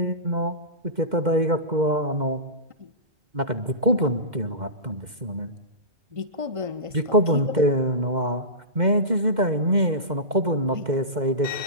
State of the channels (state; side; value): late; left; 2.1 ms